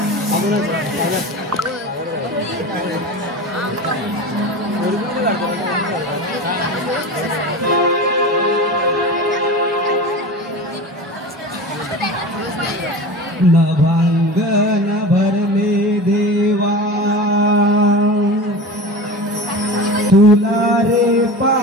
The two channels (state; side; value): normal; both; correlation 0.31